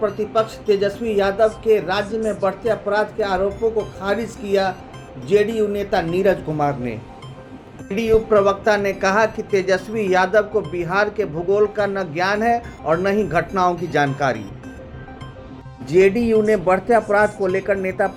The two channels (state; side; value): identical; both; correlation 1.00